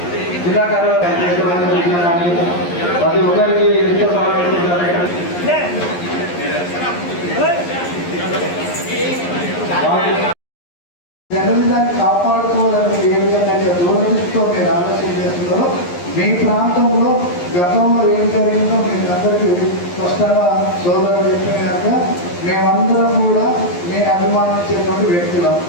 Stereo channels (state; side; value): late; right; 11 ms